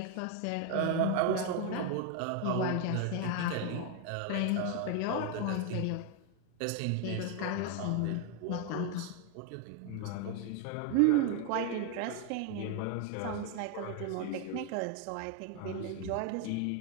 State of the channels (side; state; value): both; different; correlation 0.01